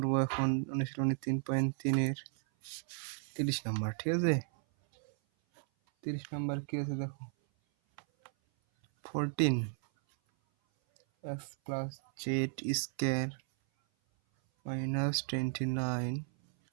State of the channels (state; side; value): silent; left; 55 dB below the other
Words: এখন অনুশীলনী 3.3-এর 30 নাম্বার। ঠিক আছে, 30 নাম্বার কি আছে দেখো। 14 x plus z square minus 29